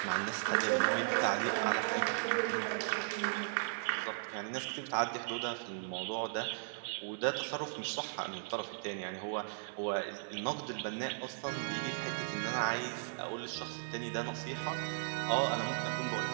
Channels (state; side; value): silent; left; 53 dB below the other